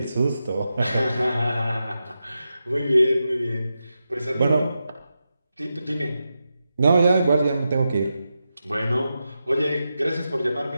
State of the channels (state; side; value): inverted; both; correlation -0.89